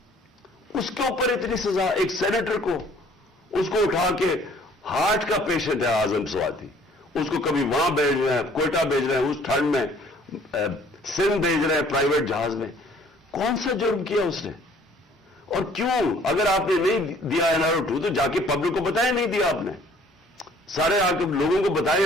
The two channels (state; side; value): normal; both; correlation 0.57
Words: اس کے اوپر اتنی سزا, ایک سینیٹر کو, اس کو اٹھا کے, ہارٹ کا پیشنٹ ہے اعظم سواتی, اس کو کبھی وہاں بھیج رہے ہیں, کوئٹہ بھیج رہے ہیں, اس ٹھنڈ میں سندھ بھیج رہے ہیں پرائیویٹ جہاز میں. کون سا جرم کیا اس نے؟ اور کیوں؟ اگر آپ نے نہیں دیا NRO2 تو جا کے پبلک کو بتائیں نہیں دیا آپ نے. سارے آ کے لوگوں کو بتائیں